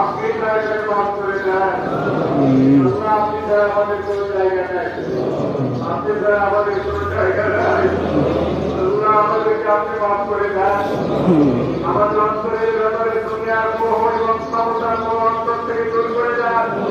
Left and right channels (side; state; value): both; identical; correlation 1.00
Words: জায়গায় মাফ করে দেন। আল্লাহ, আপনি ছাড়া আমাদের কোনো জায়গা নাই, আপনি ছাড়া আমাদের কোনো জায়গা নাই। আল্লাহ, আমাদেরকে আপনি মাফ করে দেন। আমাদের অন্তরের ব্যাপারে দুনিয়ার মোহ এবং ক্ষমতার মোহ অন্তর থেকে দূর করে দেন।